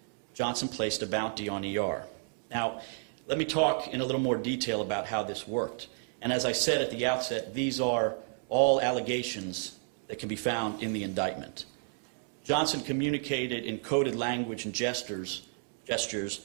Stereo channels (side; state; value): left; silent; digital silence